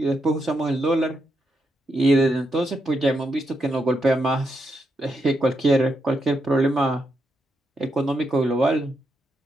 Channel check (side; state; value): both; normal; correlation 0.82